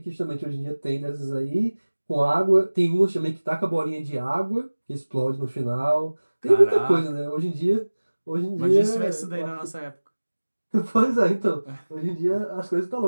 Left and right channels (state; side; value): inverted; both; correlation -1.00